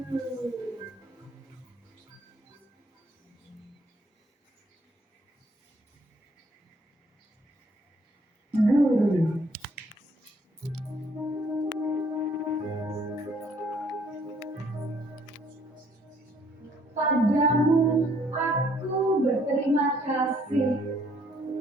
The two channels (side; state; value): both; normal; correlation 0.64